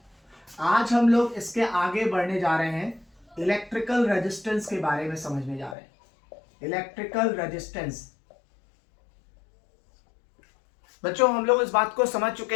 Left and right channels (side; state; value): right; drops out; at 5.8 s